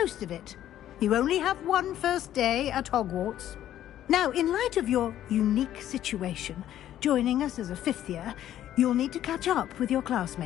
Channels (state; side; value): quieter; right; 11.9 dB